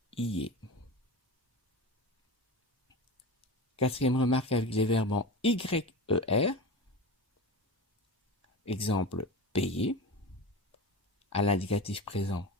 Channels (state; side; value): normal; both; correlation 0.28